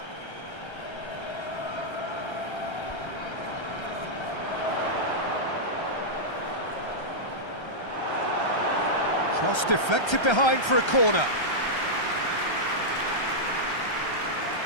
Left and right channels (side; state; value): right; late; 1.3 ms